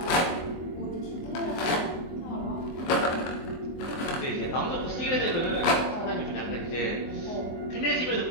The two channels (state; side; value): late; right; 24 ms